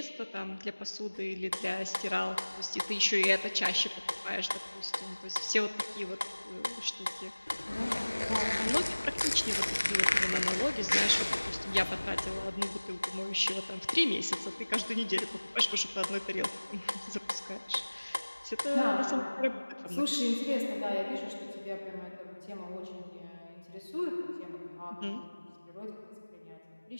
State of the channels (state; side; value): inverted; both; correlation -1.00